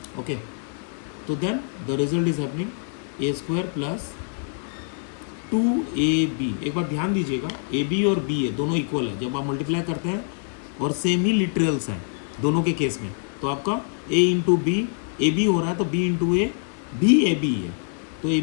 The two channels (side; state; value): right; silent; 57 dB below the other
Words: Okay, तो then the result is happening A square plus 2ab। एक बार ध्यान दीजिएगा, ए बी और बी ए दोनों इक्वल है, जब आप मल्टीप्लाई करते हैं और सेम ही लिटरल्स हैं दोनों के केस में, तो आपका a into B A B हो रहा है तो b इंटू ए भी ए बी है, तो ए